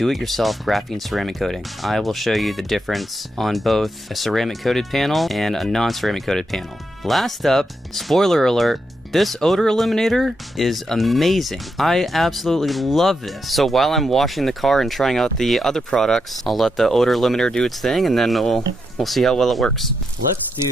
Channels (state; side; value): normal; both; correlation 0.83